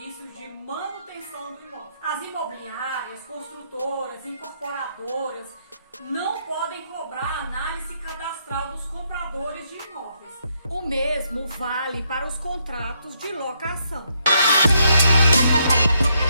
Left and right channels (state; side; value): inverted; both; correlation -0.76